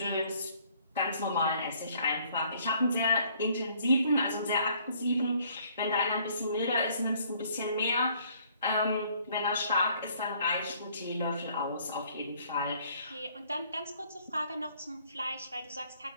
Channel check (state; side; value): inverted; both; correlation -0.61